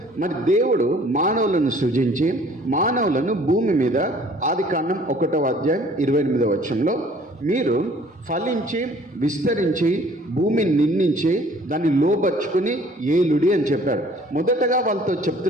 మరి దేవుడు మానవులను సృజించి మానవులను భూమి మీద ఆదికాండం 1:28 మీరు ఫలించి విస్తరించి భూమిని నిందించి దాన్ని లోబర్చుకుని ఏలుడి అని చెప్పాడు. మొదటగా వాళ్ళతో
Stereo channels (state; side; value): normal; both; correlation 0.55